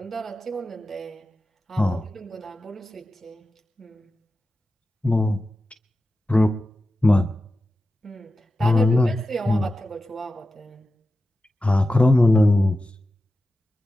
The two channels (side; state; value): both; normal; correlation 0.93